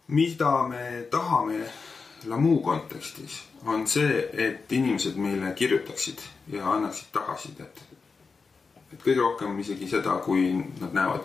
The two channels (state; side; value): quieter; right; 4.8 dB